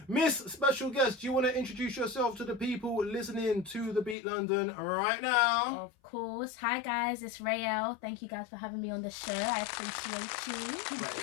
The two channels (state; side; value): drops out; right; at 4.2 s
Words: Miss Special Guest, do you want to introduce yourself to the people listening to The Beat London right now? Of course. Hi guys, it's Rai-Elle. Thank you guys for having me on the show. I appreciate you.